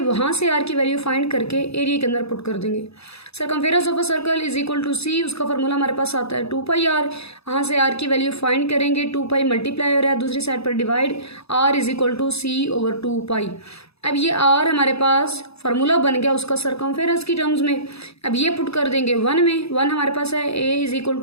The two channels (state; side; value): late; right; 0.78 ms